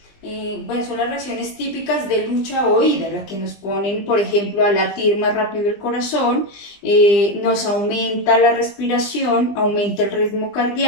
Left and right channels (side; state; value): right; late; 20 ms